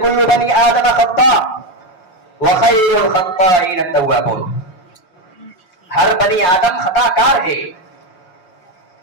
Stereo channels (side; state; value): right; late; 5.6 ms